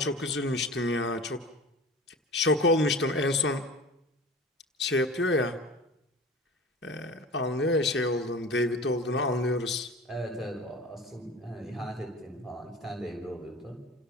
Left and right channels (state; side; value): normal; both; correlation 0.38